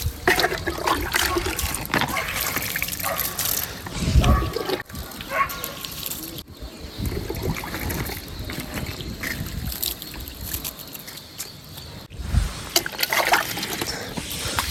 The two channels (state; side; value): identical; both; correlation 1.00